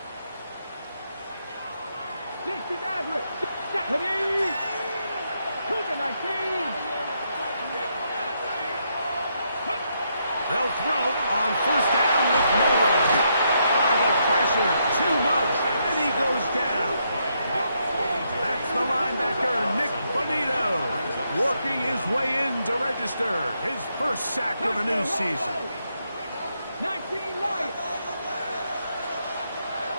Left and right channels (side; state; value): both; inverted; correlation -0.78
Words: They'll throw on first down with no run. The pressure, too much, and he goes down. That's the linebacker, Nick Bonito, working his way in to register his first sack of the new season. 19 Lions.